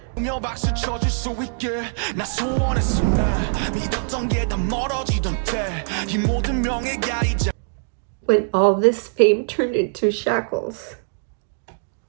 When all this fame turned into shackles.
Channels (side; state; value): left; silent; digital silence